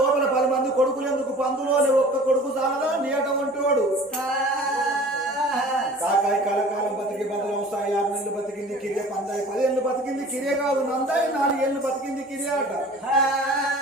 లోపల 10 మంది కొడుకులు ఎందుకు, పందులోనే ఒక్క కొడుకు చాలదా నీట వంటివాడు కాకాయ కలకాలం బతికి బదులు 6 నెలలు బతికింది కిరియే, పందాయి 10 ఏళ్ళు బతికింది కిరియే కాదు, నందాయి 4 ఏళ్ళు బతికింది కిరియే అట.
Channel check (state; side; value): normal; both; correlation 0.44